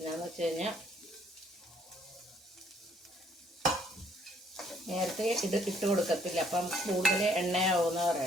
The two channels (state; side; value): normal; both; correlation 0.65